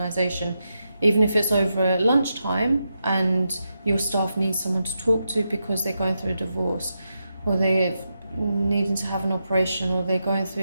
even if it's over lunchtime and your staff need someone to talk to because they're going through a divorce, or they're needing to have an operation, or they're going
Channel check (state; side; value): inverted; both; correlation -0.86